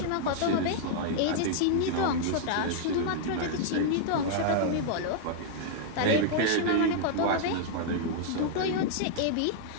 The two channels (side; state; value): both; different; correlation -0.01